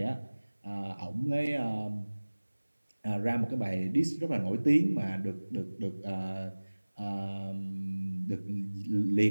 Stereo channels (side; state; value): both; inverted; correlation -1.00